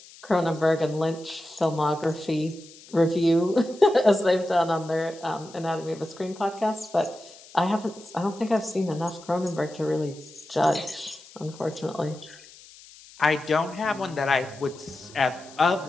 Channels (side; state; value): left; noise; hiss, 21 dB below the sound